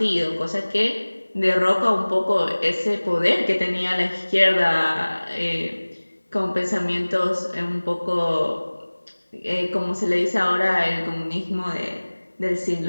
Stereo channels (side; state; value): both; inverted; correlation -1.00